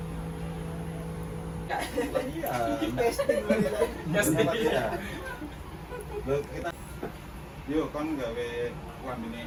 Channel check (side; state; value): both; identical; correlation 1.00